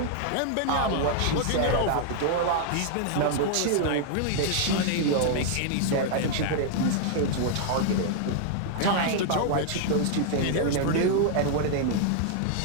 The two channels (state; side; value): different; both; correlation 0.00